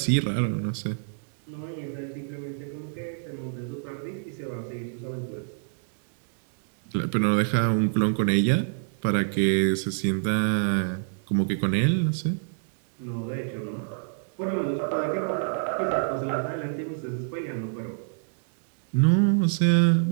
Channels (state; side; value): silent; left; digital silence